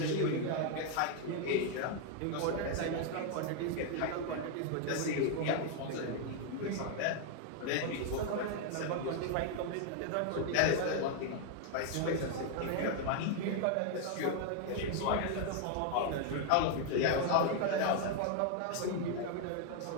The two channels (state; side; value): different; both; correlation 0.00